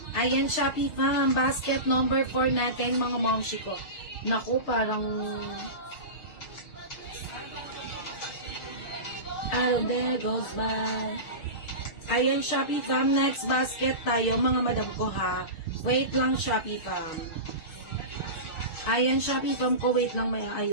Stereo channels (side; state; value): right; late; 6.5 ms